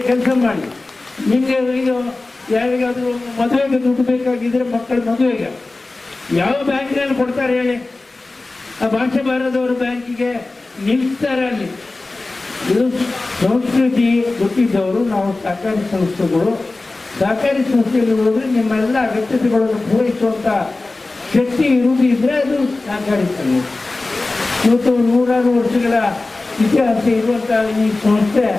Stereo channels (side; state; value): right; quieter; 3.2 dB